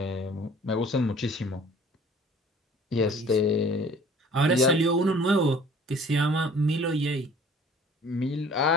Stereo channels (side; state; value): both; normal; correlation 0.50